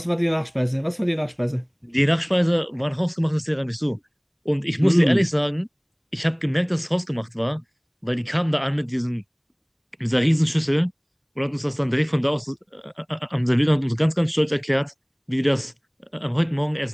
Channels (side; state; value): both; identical; correlation 1.00